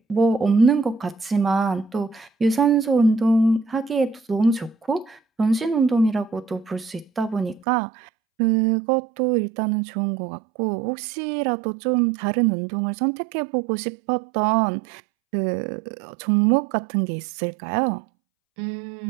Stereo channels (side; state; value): left; drops out; at 7.7 s